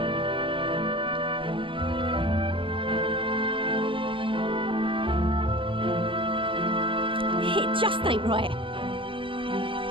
It just ain't right.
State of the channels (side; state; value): left; late; 0.25 ms